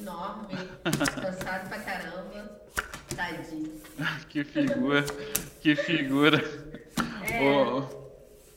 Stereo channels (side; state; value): both; identical; correlation 1.00